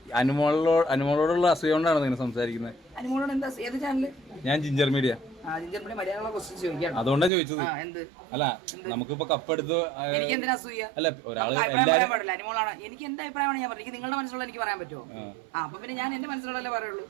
അനുമോളോടുള്ള അസൂയ കൊണ്ടാണ് നിങ്ങൾ സംസാരിക്കുന്നത്? അനുമോളോട് എന്താ? ഏത് ചാനല്? ഞാൻ ജിഞ്ചർ മീഡിയ. അതുകൊണ്ടാണ് ചോദിച്ചത്. അല്ല, നമുക്കിപ്പോ കപ്പെടുത്ത് അല്ല ഒരാള് എല്ലാവരും അനുമോളാണ്. എനിക്ക് എന്റെ അഭിപ്രായമാണ് ഞാൻ പറഞ്ഞത്. നിങ്ങളുടെ മനസ്സിലുള്ള എനിക്ക് പറയാൻ പറ്റുമോ? അപ്പൊ പിന്നെ ഞാൻ എന്റെ മനസ്സിലുള്ളതല്ലേ പറയുള്ളൂ.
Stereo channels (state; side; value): drops out; left; at 7.3 s